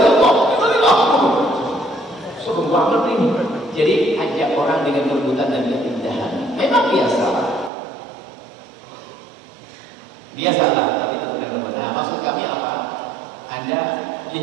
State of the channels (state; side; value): drops out; left; at 7.7 s